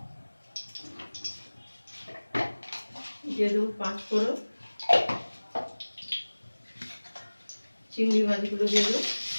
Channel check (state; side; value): inverted; both; correlation -1.00